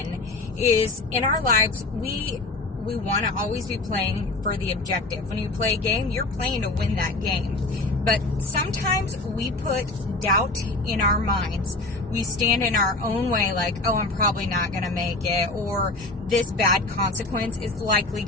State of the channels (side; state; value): right; quieter; 3.0 dB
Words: is in our lives, we want to always be playing for the objective. When you play a game, you're playing to win that game. But sometimes we put doubt in our minds. We stand in our own way like, oh, I'm probably not going to make it, or this bad consequence is likely